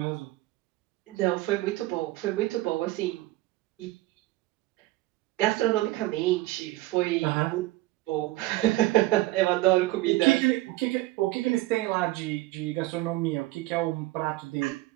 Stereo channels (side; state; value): left; quieter; 18.4 dB